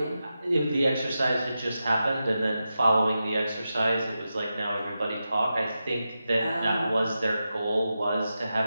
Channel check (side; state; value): both; inverted; correlation -0.90